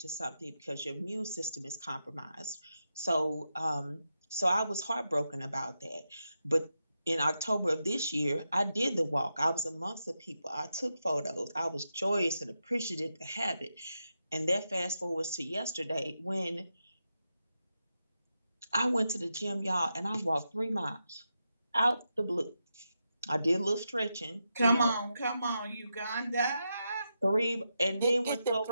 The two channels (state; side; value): inverted; both; correlation -0.87